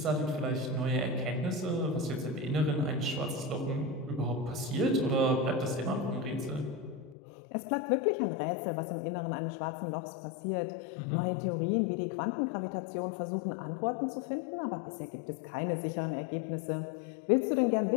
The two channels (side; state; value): right; drops out; at 7.2 s